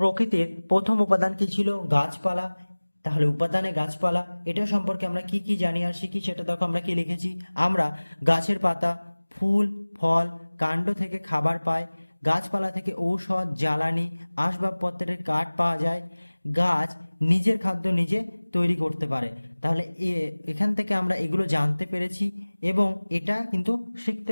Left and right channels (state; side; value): inverted; both; correlation -1.00